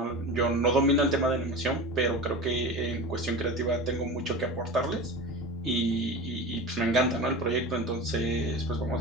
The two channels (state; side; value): normal; both; correlation 0.30